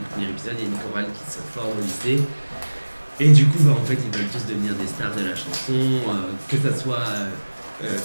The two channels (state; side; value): inverted; both; correlation -1.00